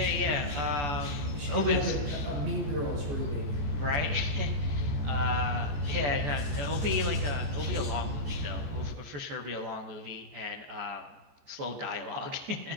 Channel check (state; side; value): late; left; 14 ms